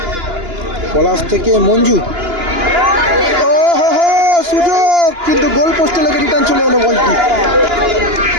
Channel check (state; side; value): late; left; 2.9 ms